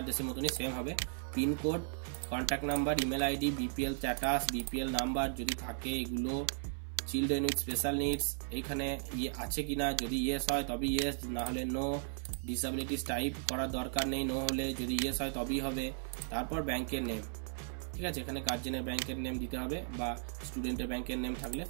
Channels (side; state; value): left; silent; 54 dB below the other